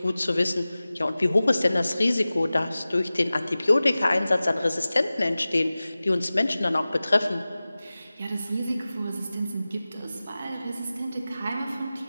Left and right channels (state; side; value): inverted; both; correlation -0.97